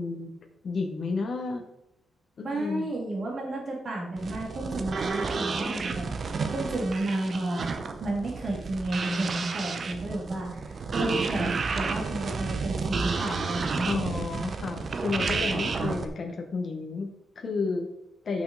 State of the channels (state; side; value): normal; both; correlation 0.86